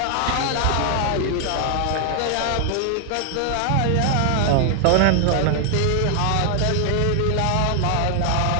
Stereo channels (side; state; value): both; different; correlation 0.00